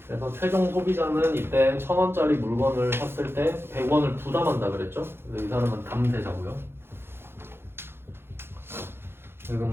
그래서 최종 소비자는 이때 1,000원짜리 물건을 샀을 때 100원을 부담한다 그랬죠? 근데 이 사람은 담대자고요.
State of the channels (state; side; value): late; left; 0.11 ms